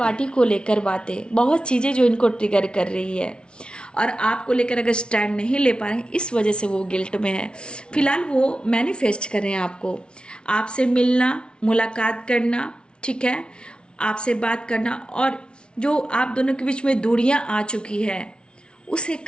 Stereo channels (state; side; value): late; right; 0.056 ms